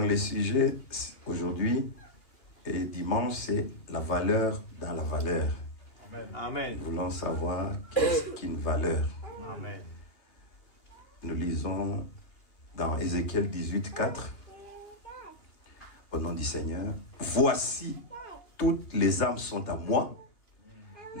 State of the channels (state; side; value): late; right; 2.8 ms